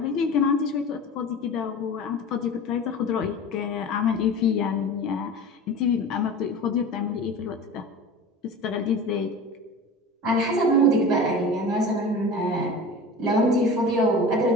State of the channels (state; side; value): normal; both; correlation 0.34